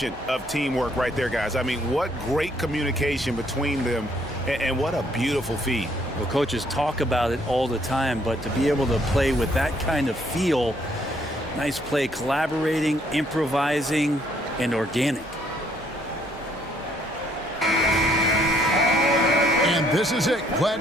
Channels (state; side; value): normal; both; correlation 0.67